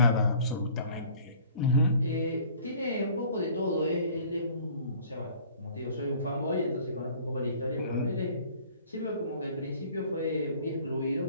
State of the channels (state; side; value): inverted; both; correlation -0.51